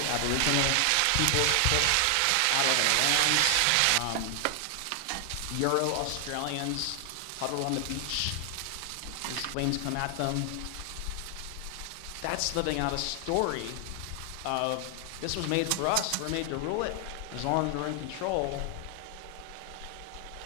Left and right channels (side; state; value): both; different; correlation 0.00